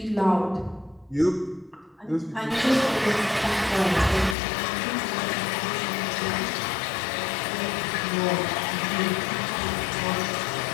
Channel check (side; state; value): right; drops out; at 4.4 s